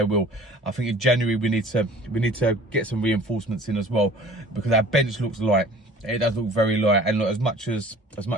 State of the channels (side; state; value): both; normal; correlation 0.47